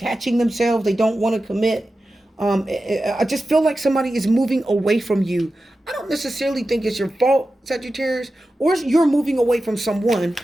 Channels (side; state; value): both; normal; correlation 0.93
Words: themselves. They don't want to commit. I just feel like somebody is moving away from you. I don't necessarily think it's your fault, Sagittarius, or you're moving away from someone,